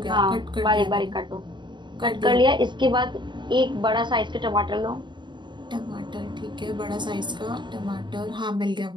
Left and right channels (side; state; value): left; late; 0.22 ms